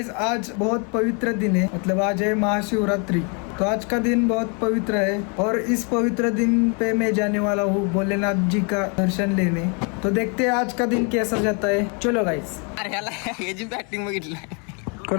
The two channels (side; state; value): right; quieter; 35.8 dB